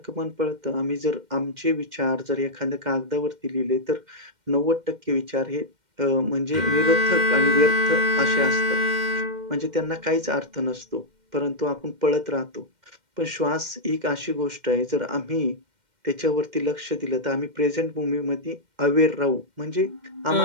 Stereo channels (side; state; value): left; late; 2.1 ms